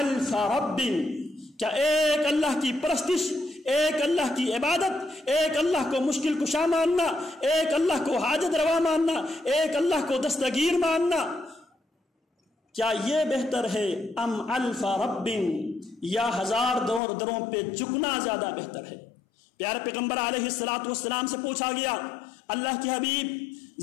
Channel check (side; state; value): right; drops out; at 17.0 s